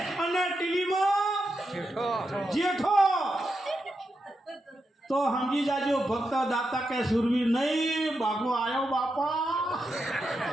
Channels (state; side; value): normal; both; correlation 0.86